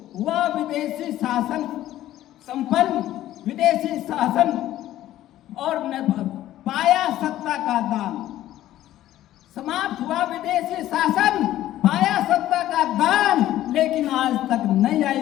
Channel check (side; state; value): right; quieter; 13.6 dB